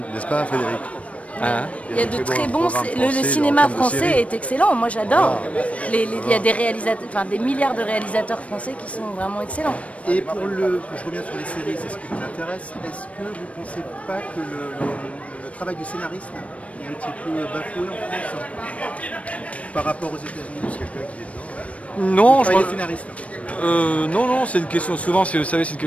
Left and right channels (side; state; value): right; late; 0.064 ms